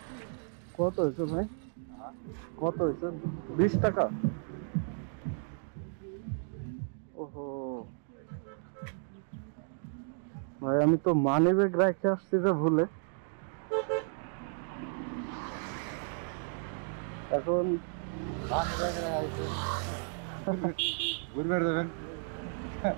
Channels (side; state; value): left; silent; 55 dB below the other